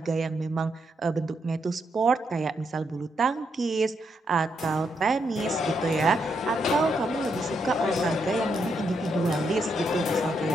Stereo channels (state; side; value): normal; both; correlation 0.79